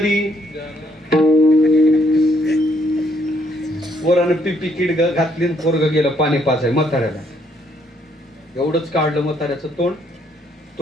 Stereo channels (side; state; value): both; normal; correlation 0.70